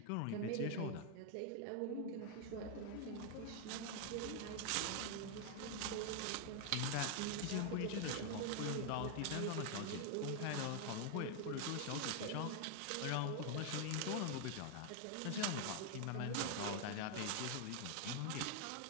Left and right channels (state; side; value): different; both; correlation 0.00